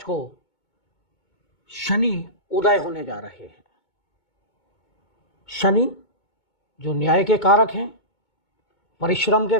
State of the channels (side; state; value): right; late; 2.2 ms